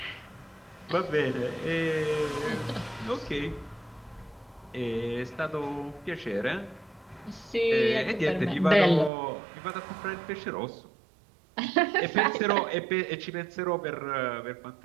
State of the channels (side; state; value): left; drops out; at 9.1 s